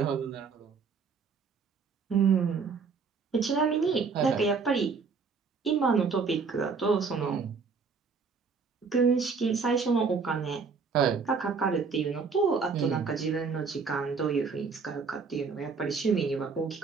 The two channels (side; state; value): left; quieter; 5.1 dB